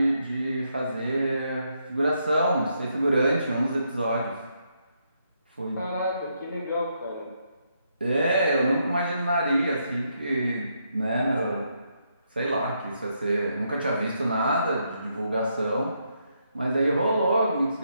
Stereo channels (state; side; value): inverted; both; correlation -0.78